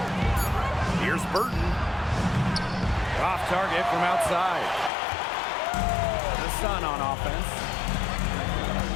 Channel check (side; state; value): right; drops out; at 4.9 s